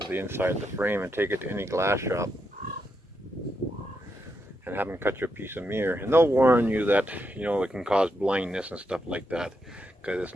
the inside of the frame and take it to any glass shop and have them cut you a piece of mirror. And they'll warn you that, you know, it can cause blindness and stuff like that because it's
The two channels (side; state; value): both; normal; correlation 0.82